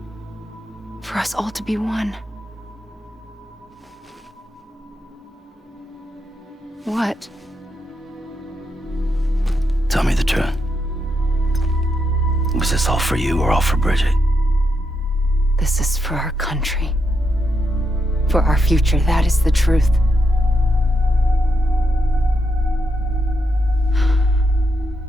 For us all to be one. What? Tell me the truth. Was this all for you or all for Bridget? This is for our country. For our future, that is the truth.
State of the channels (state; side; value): normal; both; correlation 0.82